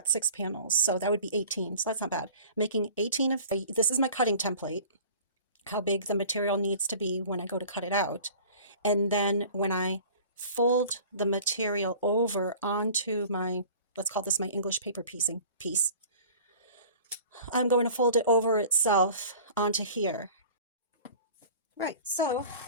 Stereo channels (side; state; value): both; inverted; correlation -0.44